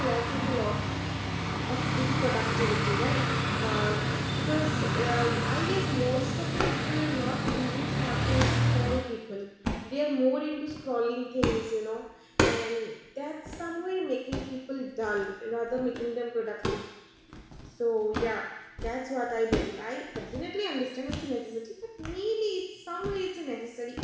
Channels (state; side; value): identical; both; correlation 1.00